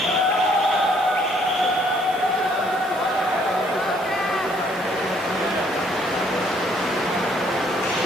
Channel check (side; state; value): both; normal; correlation 0.65